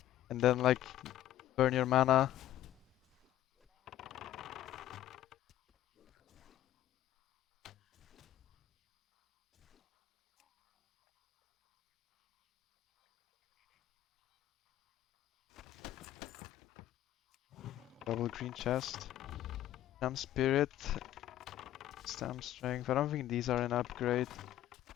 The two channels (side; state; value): right; quieter; 13.0 dB